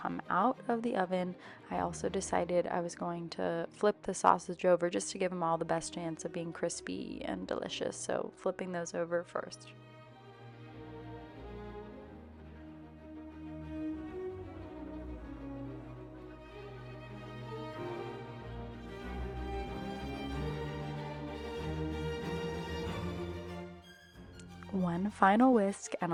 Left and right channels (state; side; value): identical; both; correlation 1.00